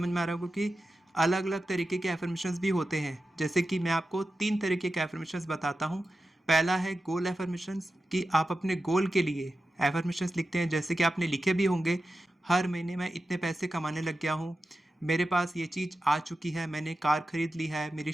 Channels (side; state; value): both; normal; correlation 0.92